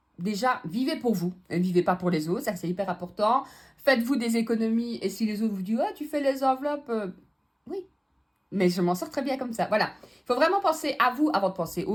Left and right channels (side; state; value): both; identical; correlation 1.00